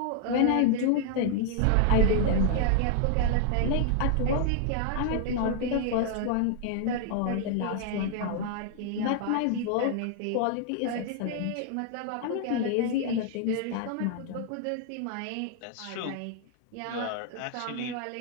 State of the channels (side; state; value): both; different; correlation 0.00